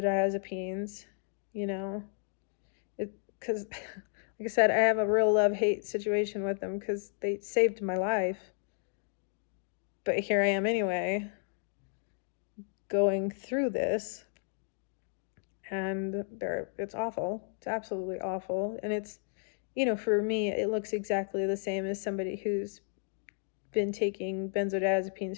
you know, because like I said, I have a real love-hate situation with them because they saved my life. But here I am anyway, going through this, and it's awful. It's absolutely awful. And it's, for me, it looks exactly the same as somebody who's been taking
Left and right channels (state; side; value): silent; right; digital silence